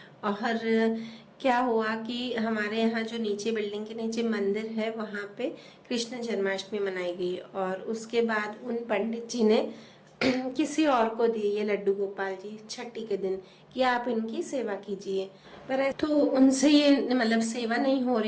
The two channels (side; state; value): both; identical; correlation 1.00